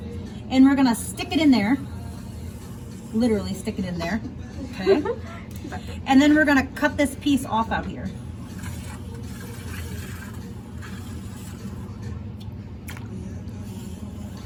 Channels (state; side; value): identical; both; correlation 1.00